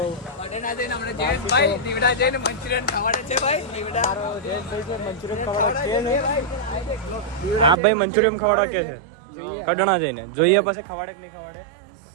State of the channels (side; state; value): left; drops out; at 7.8 s